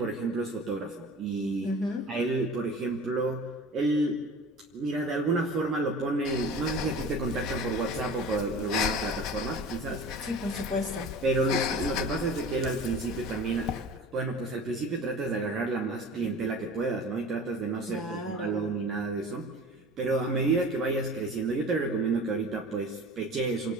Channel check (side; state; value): both; normal; correlation 0.39